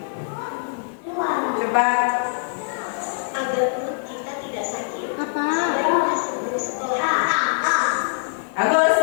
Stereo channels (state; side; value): silent; right; digital silence